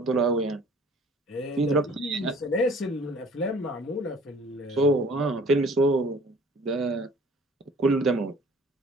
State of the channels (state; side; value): normal; both; correlation 0.52